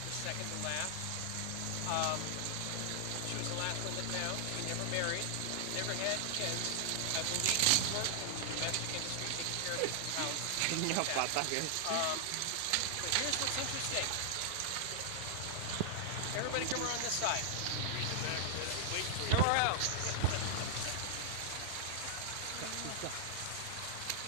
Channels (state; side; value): different; both; correlation -0.01